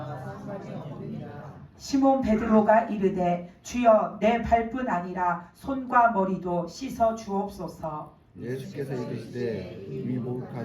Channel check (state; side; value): identical; both; correlation 1.00